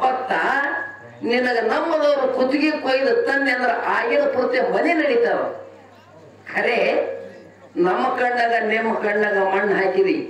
ನಿನಗ ನಮ್ಮದವ್ರು ಕುತ್ತಿಗೆ ಕೊಯ್ದು ತಂದೆ ಅಂದ್ರೆ ಆಗಿನ ಪೂರ್ತಿ ಮನೆ ನಡೀತಾವ. ಖರೆ ನಮ್ಮ ಕಣ್ಣಾಗ ನಿಮ್ಮ ಕಣ್ಣಾಗ ಮಣ್ಣು ಹಾಕಿದಿ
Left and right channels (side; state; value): both; identical; correlation 1.00